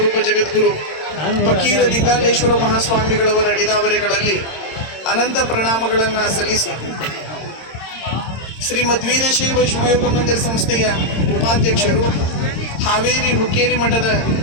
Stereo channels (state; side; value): late; right; 26 ms